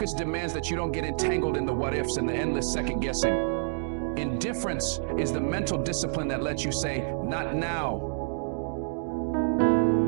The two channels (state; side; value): silent; left; digital silence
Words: demands that you don't get entangled in the what-ifs and the endless second-guessing. Indifference is the mental discipline that lets you say, "Not now.